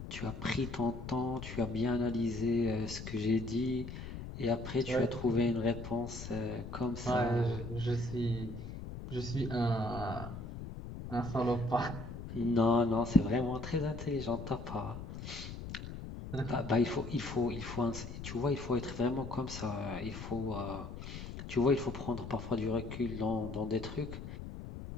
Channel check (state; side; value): noise; left; rumble, 9 dB below the sound